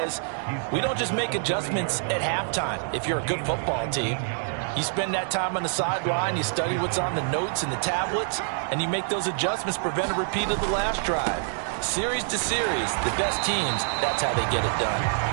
we don't just make adjustments at halftime. If you're a good football team, you spend that time on the sideline, you study what's on the notes and the tablets, and you make those adjustments, prevent a repeat of the last drive. Series to series, the best teams, that's how they get it done.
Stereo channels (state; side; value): silent; left; digital silence